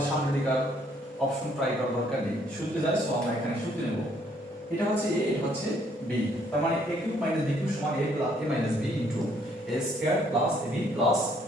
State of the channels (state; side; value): normal; both; correlation 0.66